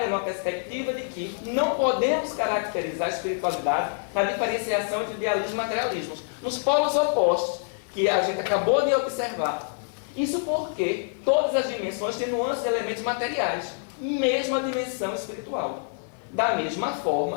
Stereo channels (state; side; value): silent; right; digital silence